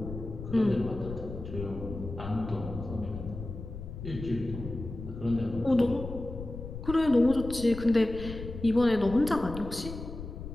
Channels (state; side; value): noise; left; rumble, 9 dB below the sound